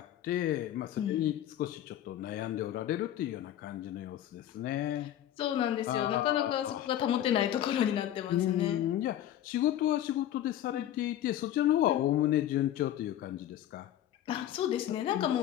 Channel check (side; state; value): right; quieter; 11.9 dB